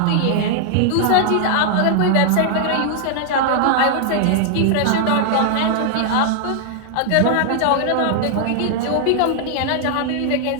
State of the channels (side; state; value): both; different; correlation 0.00